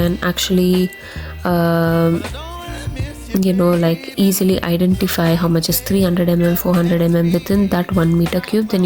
actually like easily identify how much is 300 mm, 400 mm within that 1 meter cube, then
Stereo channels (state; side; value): identical; both; correlation 1.00